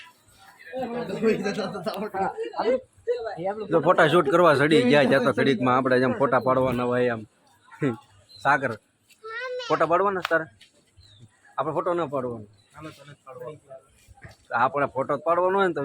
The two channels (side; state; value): both; identical; correlation 1.00